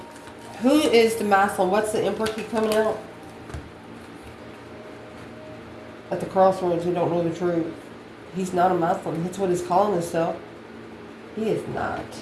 Who is the masculine? What's the Emperor keep coming out? At the crossroads, we don't know the truth. He's not a masculine. That's what he's calling himself. He is not.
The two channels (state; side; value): identical; both; correlation 1.00